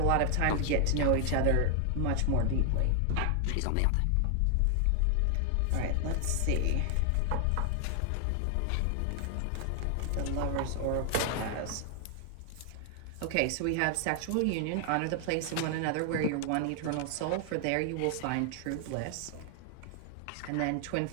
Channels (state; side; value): different; both; correlation 0.00